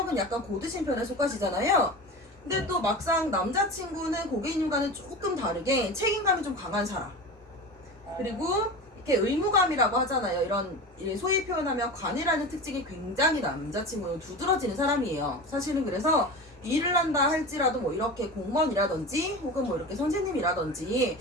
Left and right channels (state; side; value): normal; both; correlation 0.30